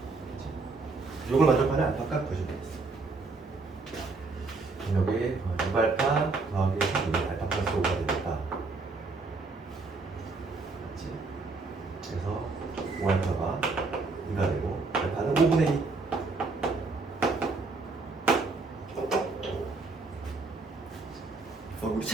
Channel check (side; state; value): left; quieter; 3.8 dB